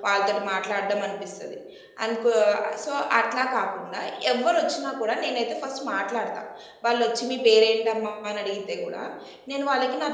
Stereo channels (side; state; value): both; identical; correlation 1.00